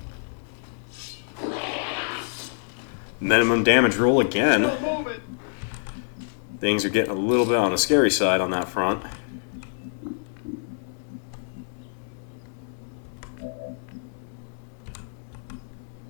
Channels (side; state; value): right; silent; digital silence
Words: Minimum damage roll again. Still moving. Things are getting a little bit on the scary side on that front.